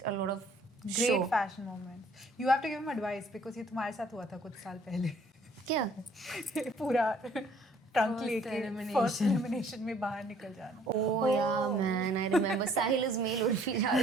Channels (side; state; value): both; normal; correlation 0.59